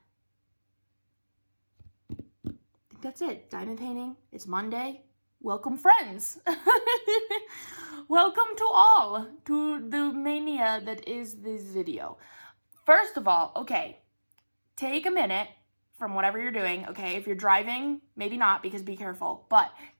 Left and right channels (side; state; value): both; inverted; correlation -1.00